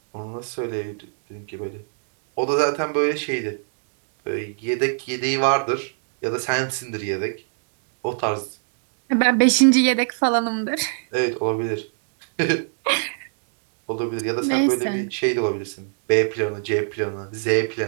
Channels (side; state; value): left; silent; digital silence